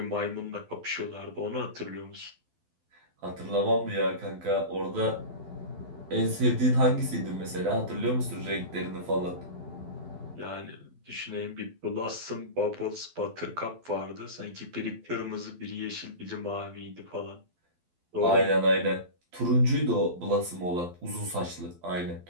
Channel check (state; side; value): late; left; 12 ms